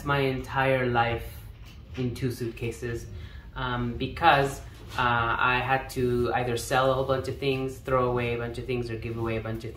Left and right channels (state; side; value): identical; both; correlation 1.00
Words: my entire life in 2 suitcases because I had to either sell a whole bunch of things, throw away a bunch of things, or give away a bunch of